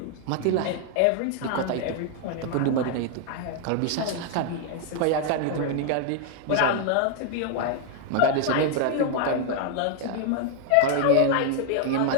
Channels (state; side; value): different; both; correlation 0.00